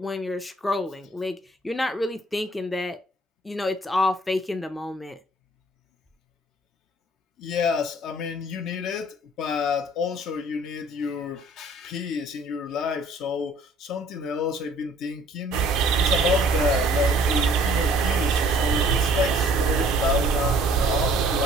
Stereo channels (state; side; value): normal; both; correlation 0.56